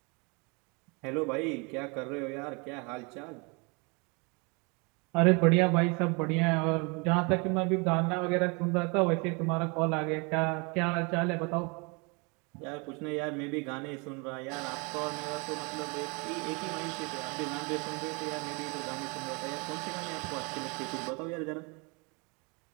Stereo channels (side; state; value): left; quieter; 30.9 dB